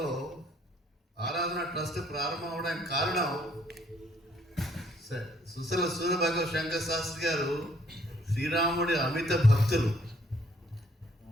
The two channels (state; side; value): normal; both; correlation 0.65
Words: ఆరాధన ట్రస్ట్ ప్రారంభం అవడానికి కారణం సుశల సూర్యభగవ శంకర శాస్త్రి గారు శ్రీరాముడి అమిత భక్తులు.